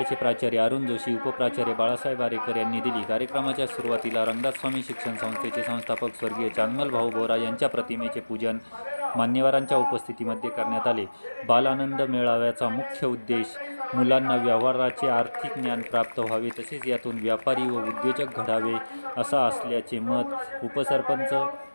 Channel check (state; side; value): inverted; both; correlation -1.00